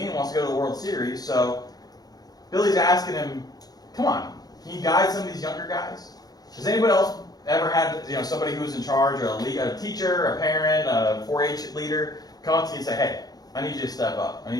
wants to go to the World Series, so Billy's asking him, come on, can you guide some of these younger guys? Has anybody else ever had somebody who was in charge, or a teacher, a parent, a 4-H leader, come up to you and say, hey, I need you to step up. I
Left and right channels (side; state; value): right; late; 0.19 ms